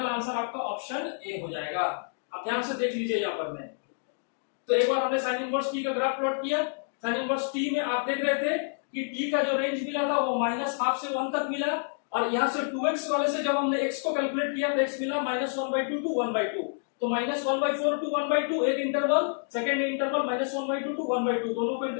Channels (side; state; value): right; silent; digital silence